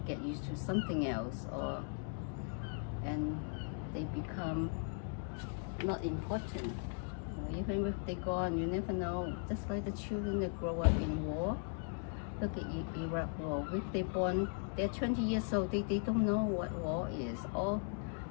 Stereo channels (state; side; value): silent; right; 52 dB below the other